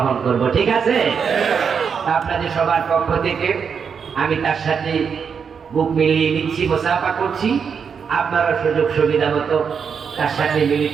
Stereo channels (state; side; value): quieter; left; 6.5 dB